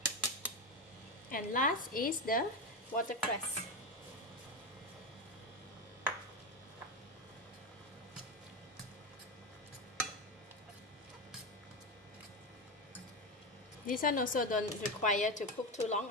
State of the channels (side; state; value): both; normal; correlation 0.15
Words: And last is the watercress. This one also don't require to cook too long.